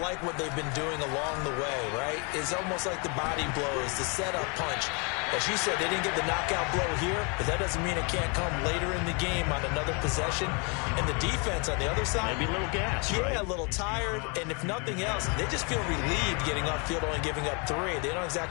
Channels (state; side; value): quieter; right; 33.6 dB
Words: like what they've been doing along the way, right? It's almost like the body blows, the setup punch. As you said, they didn't get the knockout blow here, but that doesn't mean it can't come later in the game on another possession. And the defense on the other side, maybe a little gas, yeah, right? A little tired. And if nothing else, they just feel relieved getting off field only giving up 3. They don't